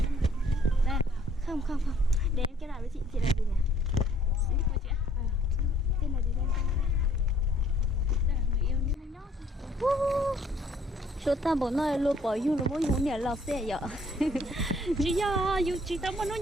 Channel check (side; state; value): both; normal; correlation 0.62